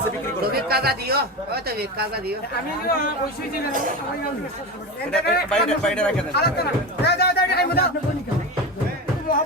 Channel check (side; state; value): both; normal; correlation 0.23